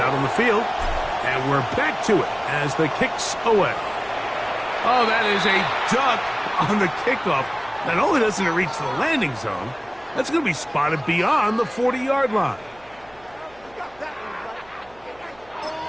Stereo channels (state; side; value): noise; right; hum, 28 dB below the sound